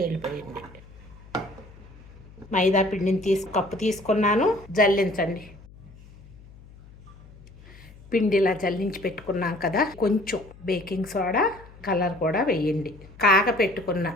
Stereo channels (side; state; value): left; noise; hum, 21 dB below the sound